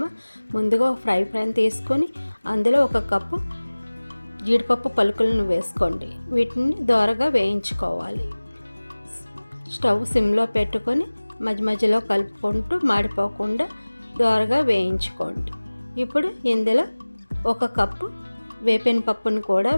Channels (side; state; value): both; inverted; correlation -1.00